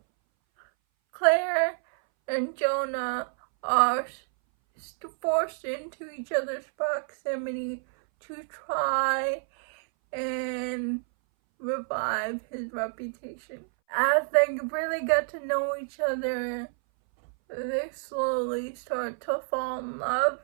Claire and Jonah are forced into each other's proximity to try and revive his reputation. As they really get to know each other, they slowly start to fall in love,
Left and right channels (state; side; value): silent; left; 59 dB below the other